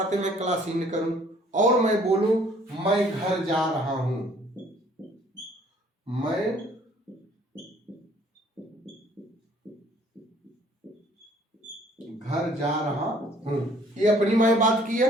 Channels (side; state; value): both; normal; correlation 0.59